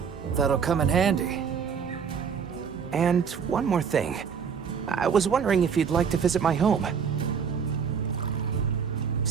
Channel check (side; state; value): left; quieter; 6.7 dB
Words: That'll come in handy. And one more thing. I was wondering if you'd like to visit my home.